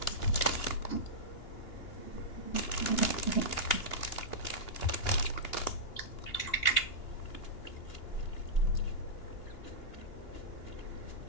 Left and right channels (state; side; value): late; right; 2.8 ms